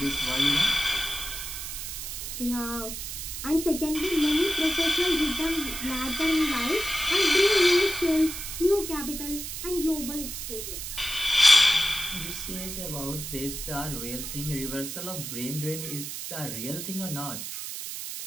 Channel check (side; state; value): right; noise; hiss, 7 dB below the sound